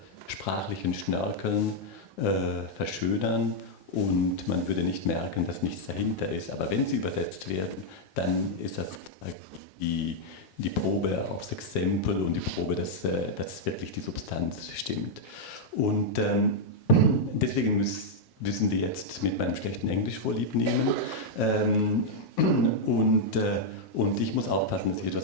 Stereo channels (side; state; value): both; normal; correlation -0.03